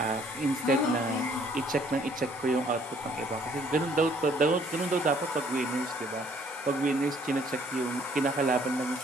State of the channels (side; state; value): both; normal; correlation 0.61